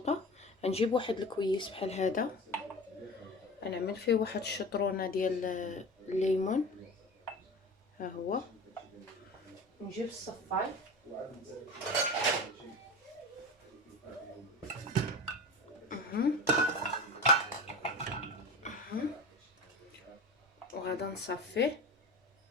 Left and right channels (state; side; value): normal; both; correlation 0.32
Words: غنجيب واحد الكويس بحال هذا، غنعمل فيه واحد الشطرونه ديال الليمون. ها هو. نجيب الصفاي وغادا نصفيه.